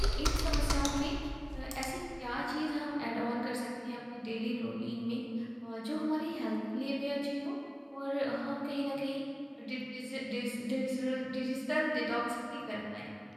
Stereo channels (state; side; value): identical; both; correlation 1.00